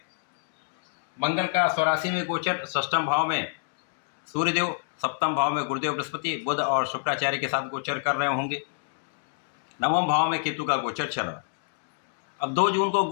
मंगल का स्वराशि में गोचर, षष्ठम भाव में सूर्यदेव, सप्तम भाव में गुरुदेव बृहस्पति, बुध और शुक्राचार्य के साथ गोचर कर रहे होंगे। नवम भाव में केतु का गोचर चल रहा है। अब 2 जून को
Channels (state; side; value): silent; right; digital silence